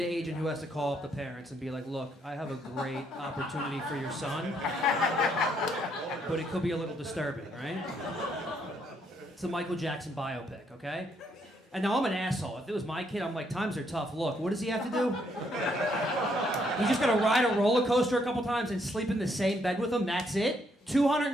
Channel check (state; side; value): normal; both; correlation 0.72